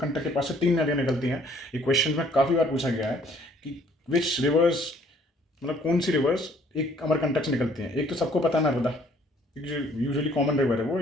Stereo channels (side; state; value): both; normal; correlation 0.60